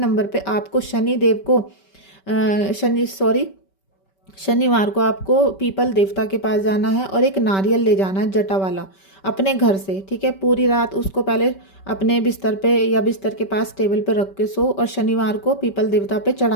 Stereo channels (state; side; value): late; right; 5.2 ms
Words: पे आपको शनि देव को शनिवार को आपको पीपल देवता के पास जाना है और एक नारियल ले जाना है जटा वाला अपने घर से, ठीक है। पूरी रात उसको पहले अपने बिस्तर पे या बिस्तर के पास टेबल पे रख के सो, और शनिवार को पीपल देवता पे